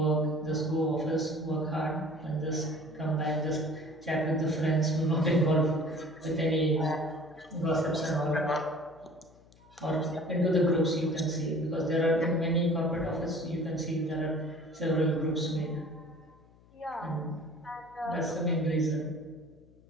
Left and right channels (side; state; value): left; noise; hum, 27 dB below the sound